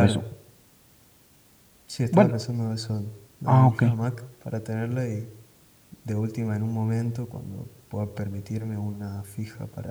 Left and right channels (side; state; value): both; identical; correlation 1.00